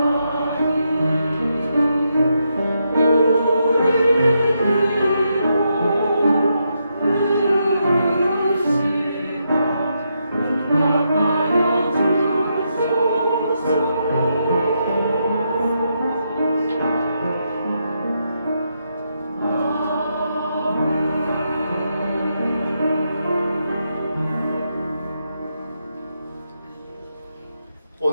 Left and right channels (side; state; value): both; inverted; correlation -0.82